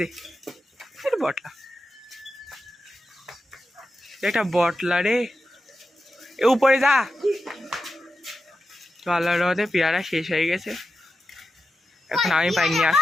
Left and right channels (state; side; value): normal; both; correlation 0.90